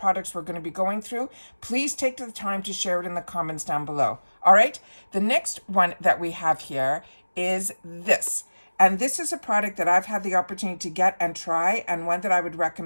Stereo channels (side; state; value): both; inverted; correlation -1.00